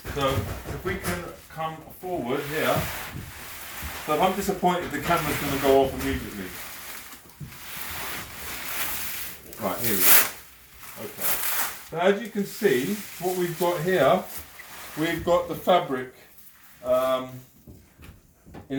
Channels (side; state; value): both; identical; correlation 1.00